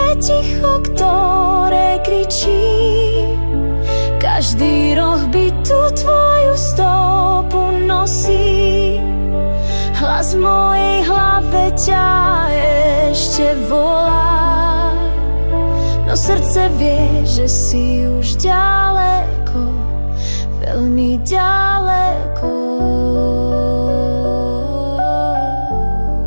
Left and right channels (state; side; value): inverted; both; correlation -1.00